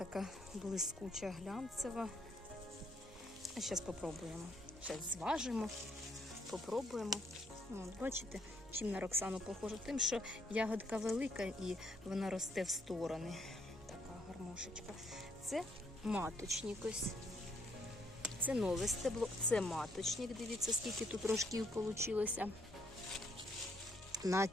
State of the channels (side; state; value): both; normal; correlation 0.71